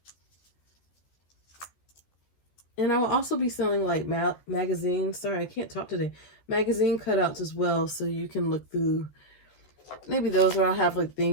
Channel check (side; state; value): right; late; 14 ms